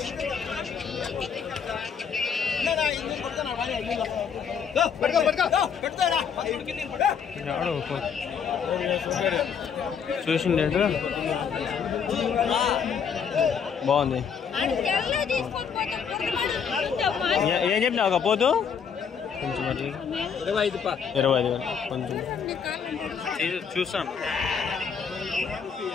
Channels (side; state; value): right; quieter; 6.9 dB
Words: చూసింది బాగుంది. ఏం చెప్పినా ఒక పోతు కొంచెం 25,000 కొంచెం చూస్తాను.